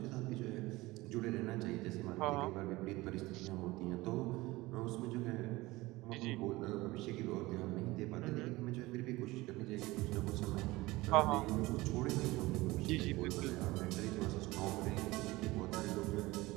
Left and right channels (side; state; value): left; quieter; 20.2 dB